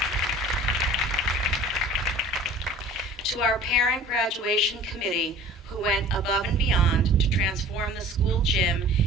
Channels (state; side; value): normal; both; correlation 0.45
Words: To our parent graduation committee, who went above and beyond to transform the school gym